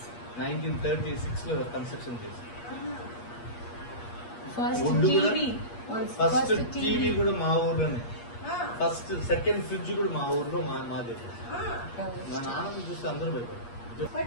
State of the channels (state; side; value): late; right; 8.4 ms